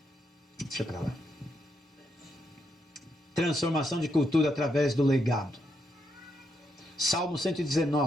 Deixa pra lá. Transformação de cultura através do legado. Salmo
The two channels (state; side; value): normal; both; correlation 0.80